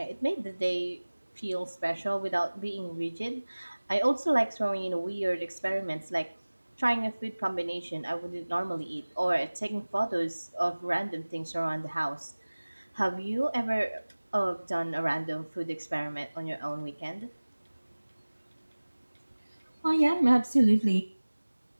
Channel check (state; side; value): inverted; both; correlation -1.00